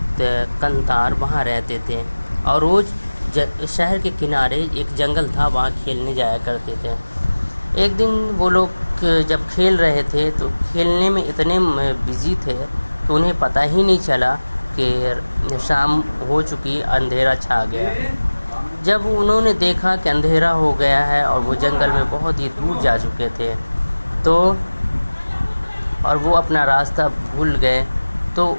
कंतार, वहाँ रहते थे और रोज़ शहर के किनारे एक जंगल था, वहाँ खेलने जाया करते थे। एक दिन वो लोग जब खेल रहे थे तो खेलने में इतने बिजी थे तो उन्हें पता ही नहीं चला कि शाम हो चुकी, अंधेरा छा गया। जब उन्होंने देखा कि अंधेरा हो गया है और वो जंगल में बहुत ही दूर जा चुके थे तो और वो अपना रास्ता भूल गए, तो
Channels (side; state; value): both; inverted; correlation -1.00